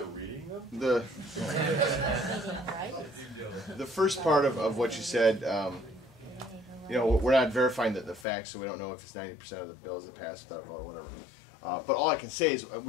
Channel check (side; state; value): right; drops out; at 8.2 s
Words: reading them? The first part of what you said, you know, we're not verifying the facts, so we don't know if it's 90% of the bills that pass without a vote or whatever. But all I can say is